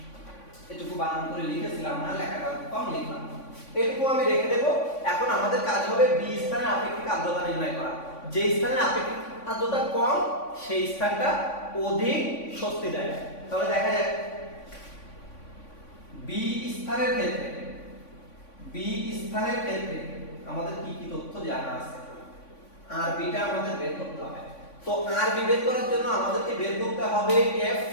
এটুকু বানান করে লিখেছিলাম না, লেখাটা কম লিখলাম, এটুকু আমি রেখে দেব। এখন আমাদের কাজ হবে বি স্থানে আপেক্ষিক আর্দ্রতা নির্ণয় করা। যে স্থানে আপেক্ষিক আর্দ্রতা কম সেই স্থানটা অধিক স্বস্তি দেয়। তাহলে দেখা যাক বি স্থানের ক্ষেত্রে আমাদের কি কি তথ্য জানা আছে, আর বিটা আমাদের বের করতে হবে। তো আর বি বের করার জন্য আমাদেরকে বের করতে হবে এফ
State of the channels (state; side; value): late; right; 3.5 ms